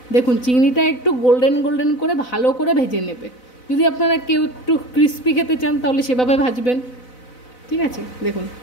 দেখুন, চিংড়িটা একটু গোল্ডেন গোল্ডেন করে ভালো করে ভেজে নেবে। যদি আপনারা কেউ একটু ক্রিস্পি খেতে চান তাহলে সেভাবে ভাজবেন। ঠিক আছে, দেখুন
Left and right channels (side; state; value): right; late; 4.0 ms